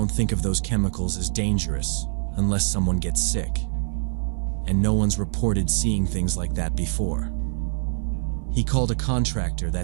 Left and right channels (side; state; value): left; silent; digital silence